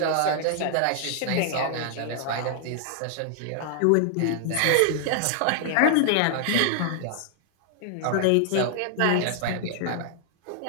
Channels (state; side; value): different; both; correlation 0.00